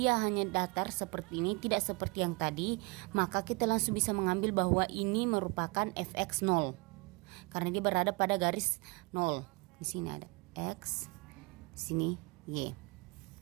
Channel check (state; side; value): quieter; left; 28.0 dB